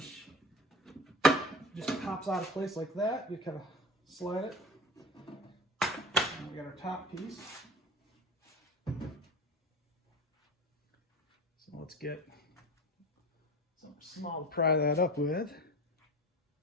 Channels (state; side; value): normal; both; correlation 0.34